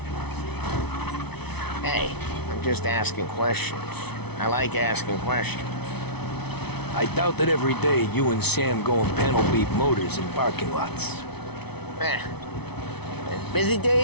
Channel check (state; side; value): late; right; 0.99 ms